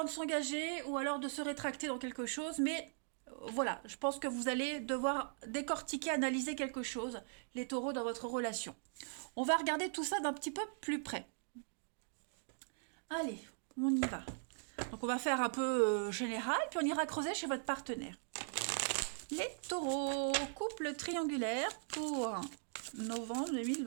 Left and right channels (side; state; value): left; silent; digital silence